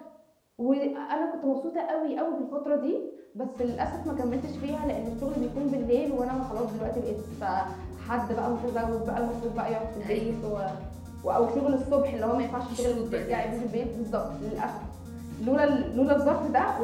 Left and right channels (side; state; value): both; identical; correlation 1.00